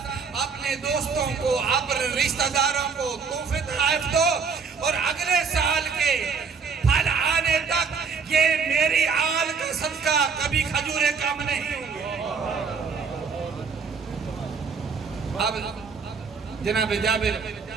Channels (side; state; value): left; quieter; 5.6 dB